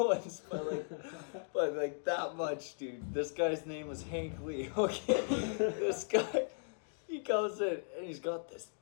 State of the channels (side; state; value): right; silent; digital silence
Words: but like that much, dude. This guy's name was Hank Lee, okay? This guy, he comes in and he's got